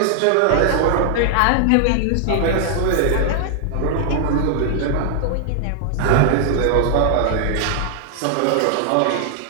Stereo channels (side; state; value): both; different; correlation 0.00